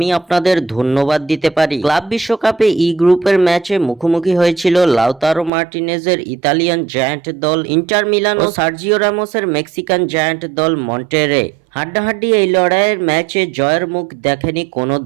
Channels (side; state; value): left; drops out; at 5.5 s